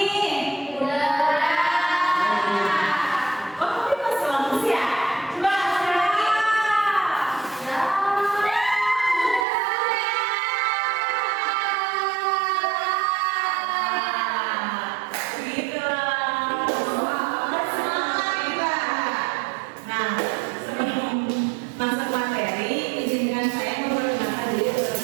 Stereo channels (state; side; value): drops out; left; at 9.5 s